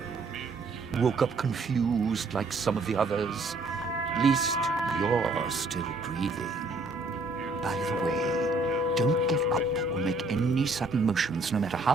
Woke up confused like some of the others. Least you're still breathing. By the way, don't get up or make any sudden motions, no matter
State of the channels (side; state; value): left; quieter; 3.0 dB